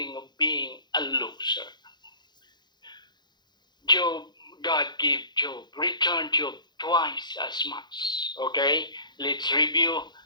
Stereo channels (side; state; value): right; late; 0.21 ms